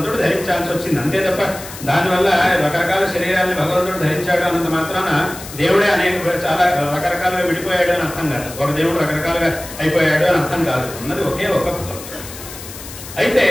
ధరించాల్సి వచ్చింది. అంతే తప్ప దానివల్ల రకరకాల శరీరాన్ని భగవంతుడు ధరించాడు అన్నంత మాత్రాన దేవుడే చాలా రకరకాలుగా విడిపోయాడు అని అర్థం కాదు. ఒక దేవుడు రకరకాలుగా అయిపోయాడు అని అర్థం కాదు. ఉన్నది ఒకే ఒక భగవంతుడు. అయితే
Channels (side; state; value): left; noise; hiss, 13 dB below the sound